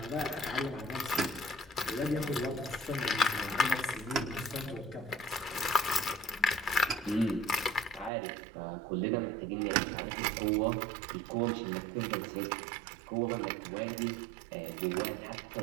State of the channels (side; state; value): left; drops out; at 8.1 s